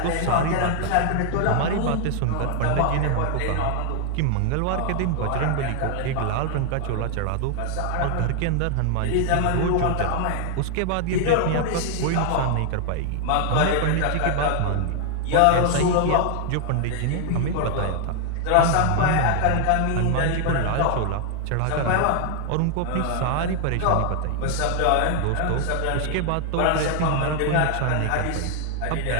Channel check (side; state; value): both; different; correlation 0.00